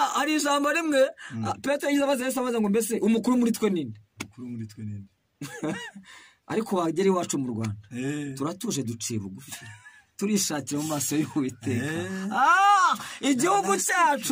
hari ijambo rimwe Petero yavuze ngo mbese umukuru muri twe ninde ariko wagera iwacu mu Rwanda turatuje duciye bugufi turishakira mu maso y'Uwiteka igihugu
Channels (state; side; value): identical; both; correlation 1.00